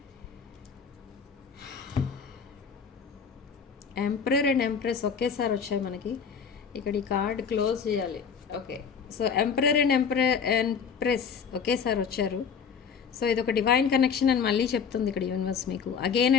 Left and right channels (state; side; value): quieter; right; 6.5 dB